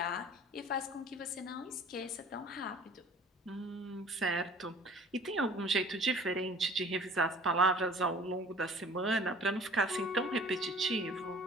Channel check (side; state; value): both; normal; correlation 0.47